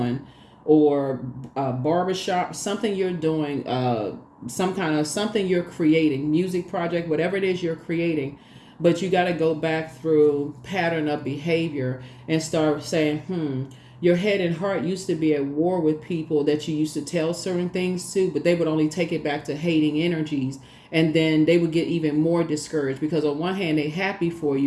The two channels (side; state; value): both; identical; correlation 1.00